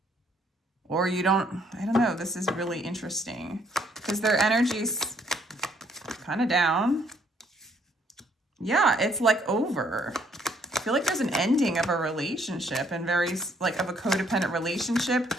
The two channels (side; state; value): both; normal; correlation 0.67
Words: Or I don't know, this is really interesting because their energy's kind of down. Yeah, it's like over. I feel like there's an ending of a relationship and of a codependent relationship